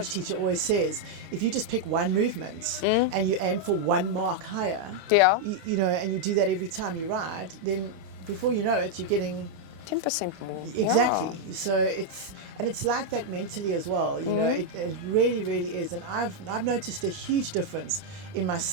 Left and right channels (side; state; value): left; late; 26 ms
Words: teacher always says, if you just pick one movement and you aim for one mark higher, you know, and you do that every time you ride, then before you know it, you're getting 10% more. Exactly. So it's like that mentally as well. You know, it really, really is. And I've noticed a huge difference in